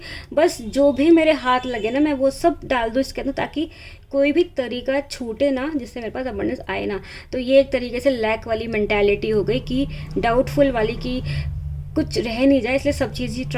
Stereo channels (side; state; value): both; identical; correlation 1.00